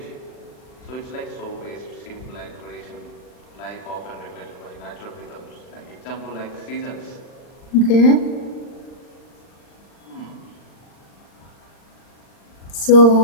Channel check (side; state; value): right; late; 39 ms